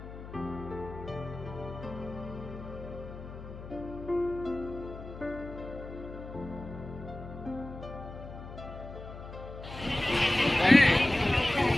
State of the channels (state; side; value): noise; left; hum, 12 dB below the sound